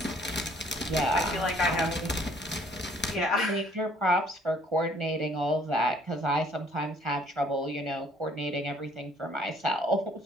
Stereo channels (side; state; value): both; normal; correlation 0.60